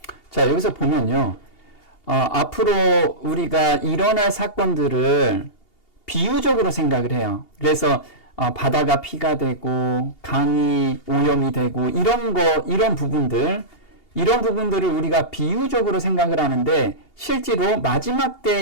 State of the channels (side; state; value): right; late; 2.8 ms